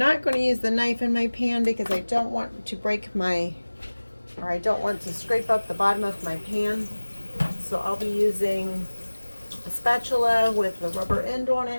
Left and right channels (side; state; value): both; inverted; correlation -1.00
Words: going to use the knife in my pan because I don't want to I don't want to scrape up the bottom of my pan. So I'll be using a spatula with the rubber end on